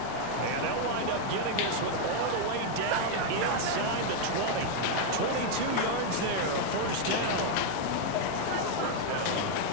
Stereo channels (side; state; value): both; different; correlation 0.00